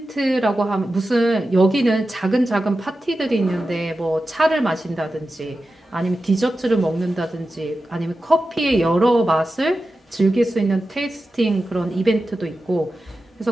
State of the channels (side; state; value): both; normal; correlation 0.92